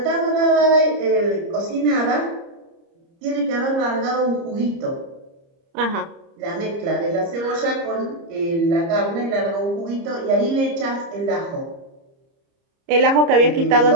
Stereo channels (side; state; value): left; late; 30 ms